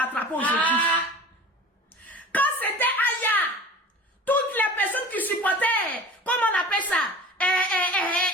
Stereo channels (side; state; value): both; normal; correlation 0.39